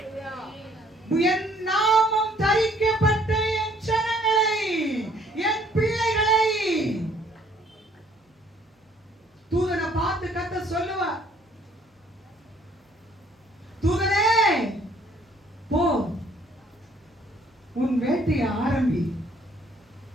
என் நாமம் தரிக்கப்பட்ட என் ஜனங்களை, என் பிள்ளைகளை தூதனை பார்த்து கர்த்தர் சொல்லுவார், தூதனே போ உன் வேட்டையை ஆரம்பி.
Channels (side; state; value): both; normal; correlation 0.62